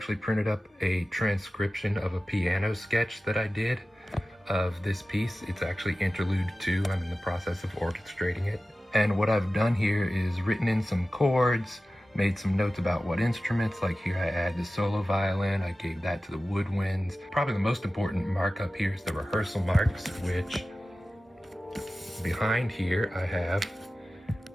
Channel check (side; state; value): both; normal; correlation 0.95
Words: printed up a transcription of a piano sketch that I did of this piece. It's actually Interlude II. I'm in the process of orchestrating it. And what I've done here is written in some chords, made some notes about what instruments, like here I add the solo violin, I gave that to the woodwinds. Probably the most important markup here is the rehearsal marks, which behind here I have